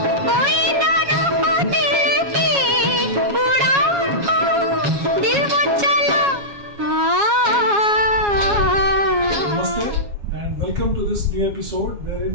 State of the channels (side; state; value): left; late; 7.2 ms